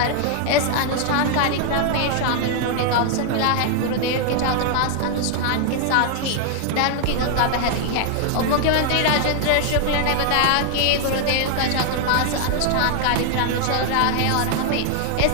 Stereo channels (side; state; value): both; different; correlation 0.00